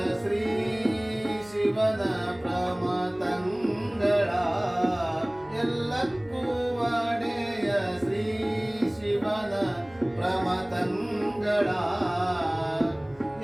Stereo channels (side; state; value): right; noise; hum, 26 dB below the sound